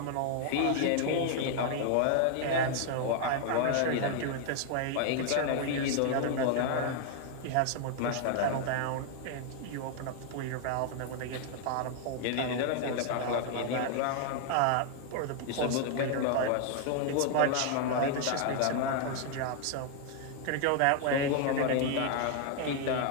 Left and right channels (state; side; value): different; both; correlation 0.00